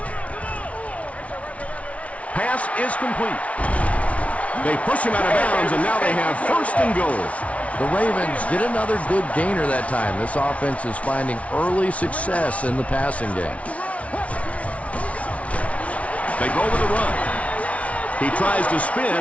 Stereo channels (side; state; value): right; late; 0.065 ms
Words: Pass is complete. They push him out of bounds, and now they have 1st and goal. The Ravens get another good gainer that time. This offense is finding early success in the passing game. They go with the run. He tries to